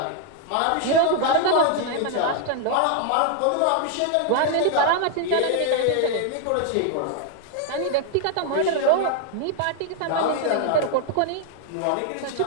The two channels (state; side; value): different; both; correlation 0.00